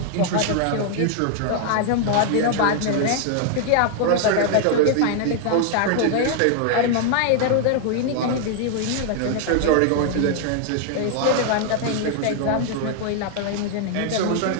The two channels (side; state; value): both; different; correlation 0.00